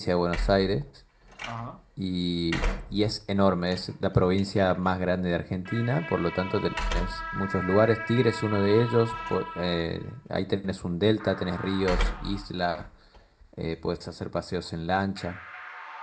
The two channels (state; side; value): identical; both; correlation 1.00